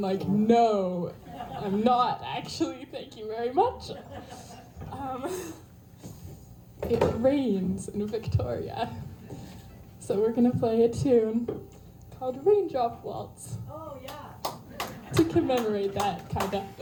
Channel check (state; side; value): identical; both; correlation 1.00